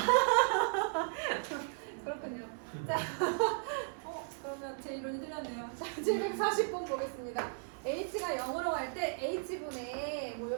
그렇군요. 자, 그러면 제 이론이 틀렸네요. 자, 740번 보겠습니다. h가 0으로 갈 때 h분의 뭐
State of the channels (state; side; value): silent; left; digital silence